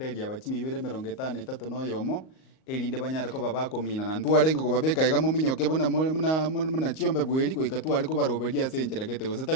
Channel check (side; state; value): right; late; 38 ms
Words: abachimibere 53 no yomo elinde banyare ko babakomina na ntwarenge ko babeka igamo minyoke bona muna chiombe bweli ko ikatware ko baroberia senjera gete gose